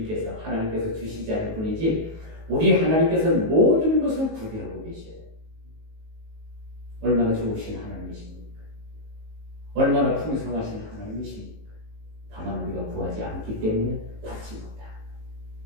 하나님께서 주시지 않을 뿐이지, 우리 하나님께서는 모든 것을 구비하고 계셔요. 얼마나 좋으신 하나님이십니까? 얼마나 풍성하신 하나님이십니까? 다만 우리가 구하지 않기 때문에 받지 못합니다.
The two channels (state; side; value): late; left; 19 ms